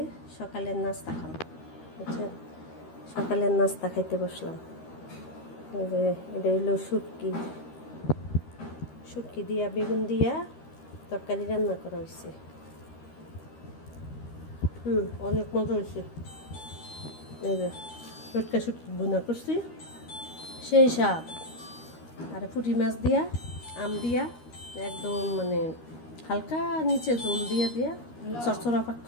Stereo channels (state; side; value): late; right; 13 ms